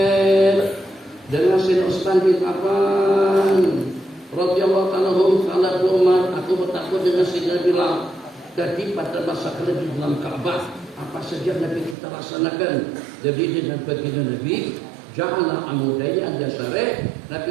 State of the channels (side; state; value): left; drops out; at 12.0 s